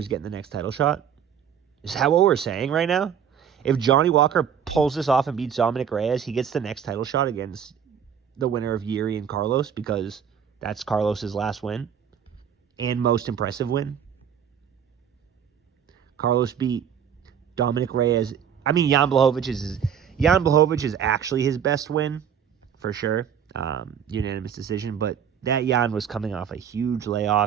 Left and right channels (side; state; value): left; quieter; 8.2 dB